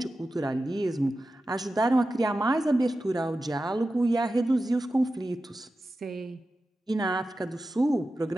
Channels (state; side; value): normal; both; correlation 0.93